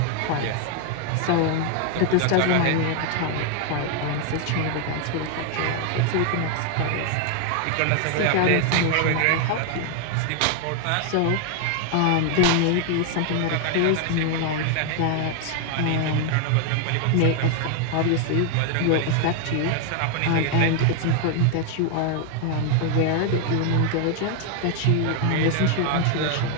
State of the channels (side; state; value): both; different; correlation 0.00